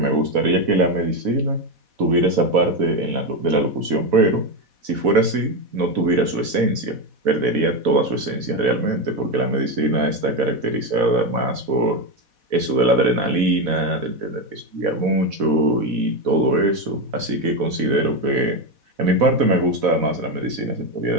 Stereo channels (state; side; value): late; left; 4.1 ms